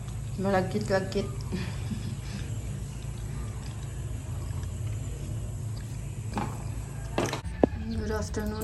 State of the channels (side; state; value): both; identical; correlation 1.00